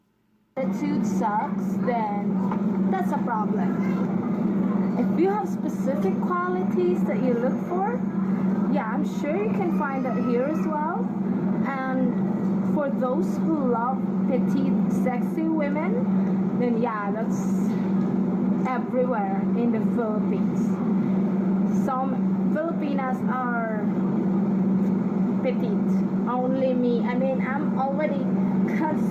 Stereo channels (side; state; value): both; identical; correlation 1.00